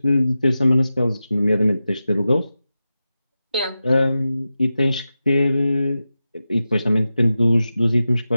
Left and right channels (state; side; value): inverted; both; correlation -0.92